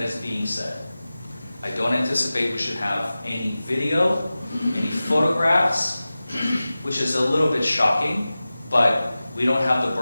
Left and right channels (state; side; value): inverted; both; correlation -0.96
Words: is being said. I don't anticipate we should have any video, any photographs, which is a little bit shocking, but we don't have the